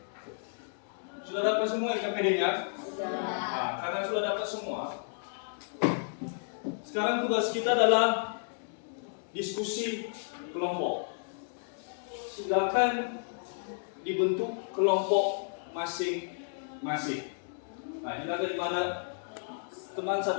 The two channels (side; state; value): right; silent; digital silence